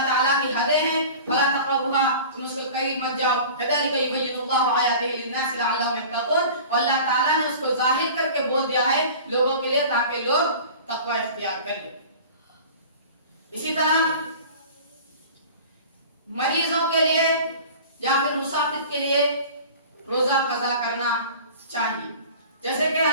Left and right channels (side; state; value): both; inverted; correlation -0.40